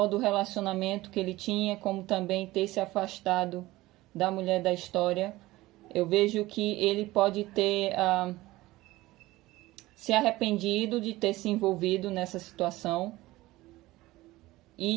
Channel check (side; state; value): left; quieter; 18.4 dB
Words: do relacionamento que ele tinha, como também ter se afastado da mulher da história. Eu vejo que ele pode ter se arrependido de ter se envolvido nessa situação